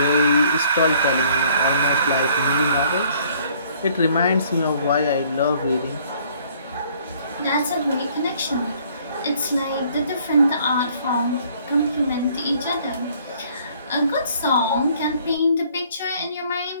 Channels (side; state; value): both; inverted; correlation -0.60